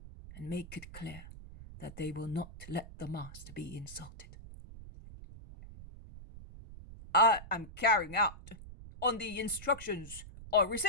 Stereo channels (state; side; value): noise; right; rumble, 15 dB below the sound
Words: and make it clear that they will not let the Master be insulted. "I am carrying out on the instructions I